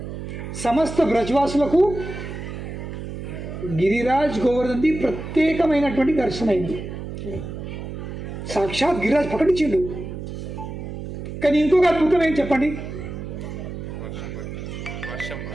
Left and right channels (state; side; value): noise; right; hum, 8 dB below the sound